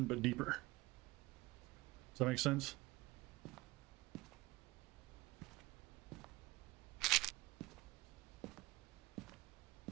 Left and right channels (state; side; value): quieter; left; 21.1 dB